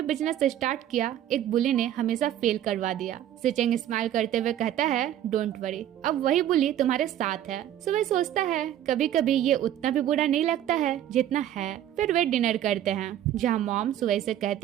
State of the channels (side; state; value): left; quieter; 11.6 dB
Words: बिजनेस स्टार्ट किया एक बुली ने हमेशा फेल करवा दिया। सीचेंग स्माइल करते हुए कहता है, डोंट वरी, अब वही बुली तुम्हारे साथ है। सुवेई सोचता है, कभी कभी ये उतना भी बुरा नहीं लगता है जितना है। फिर वे डिनर करते हैं, जहाँ मॉम सुवेई से